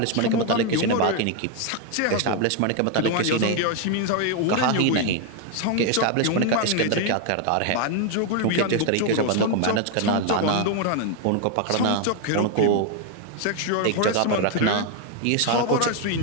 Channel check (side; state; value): both; different; correlation 0.01